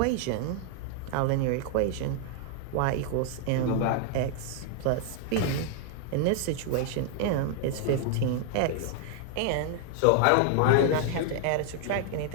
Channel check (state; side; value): different; both; correlation 0.00